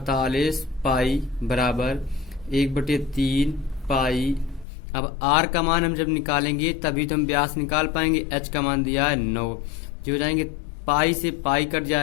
पाई बराबर 1/3 पाई। अब r का मान हम जब निकालेंगे तभी तो हम व्यास निकाल पाएंगे। h का मान दिया है 9, जो हो जाएंगे पाई से पाई कट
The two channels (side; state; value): right; drops out; at 4.7 s